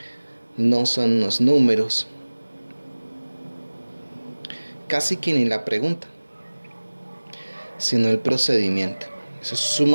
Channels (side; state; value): both; inverted; correlation -1.00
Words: no son los números, casi que ni la pregunta, sino el procedimiento. Eso es